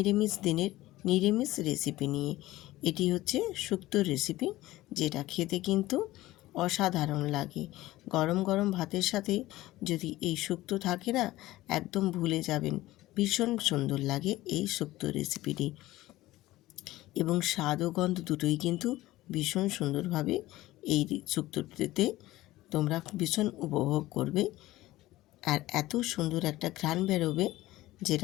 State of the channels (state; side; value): quieter; right; 17.0 dB